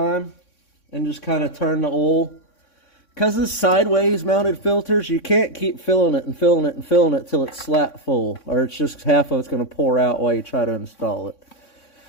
and just kind of turn the oil. Because it's sideways mounted filters, you can't keep filling it and filling it and filling it till it's slap full, or it's just half of it's going to pour out while you try to install it.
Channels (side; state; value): right; late; 3.6 ms